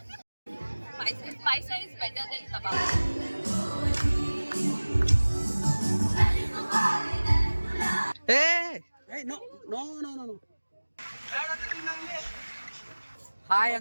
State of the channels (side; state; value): both; inverted; correlation -1.00